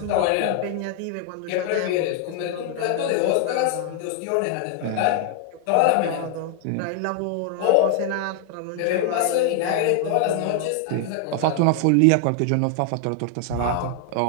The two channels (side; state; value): both; different; correlation 0.00